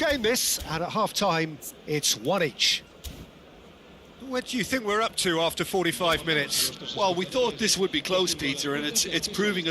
this, and at half-time, it's one each. What do you think we're up to after 45 minutes? Well, we thought this would be close, Peter, and it's proving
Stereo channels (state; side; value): identical; both; correlation 1.00